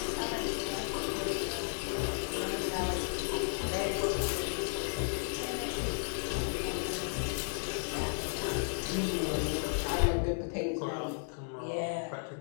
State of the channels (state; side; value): silent; right; digital silence